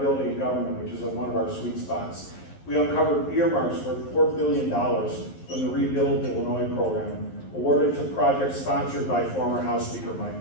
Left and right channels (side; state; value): right; late; 11 ms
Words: in government, which is one of our sweet spots. We uncovered earmarks worth $4 billion from the Rebuild Illinois program, awarded to projects sponsored by former House Speaker